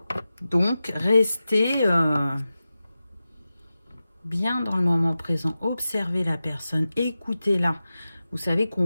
Donc restez bien dans le moment présent, observez la personne, écoutez-la. Vous savez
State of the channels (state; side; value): inverted; both; correlation -0.94